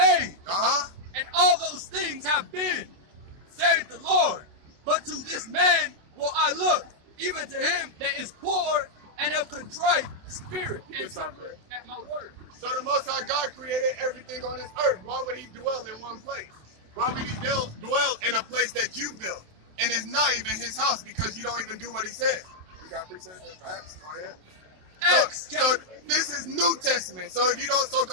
and all those things have been, saith the Lord. But to this man will I look, even to him that is poor and of contrite spirit, and suffer at my word. So the Most High God created everything on this earth. Why would he dwell in one place? Why would he dwell in a place that you built? And it's not even his house because you don't even do what he said. You got precepts and facts? Go ahead. So this is New Testament. So if you don't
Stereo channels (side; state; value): left; late; 27 ms